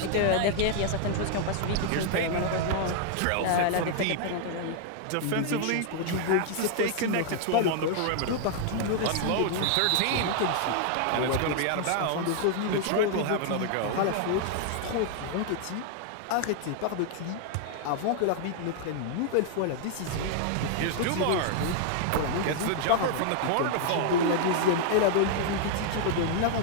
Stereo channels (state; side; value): different; both; correlation 0.00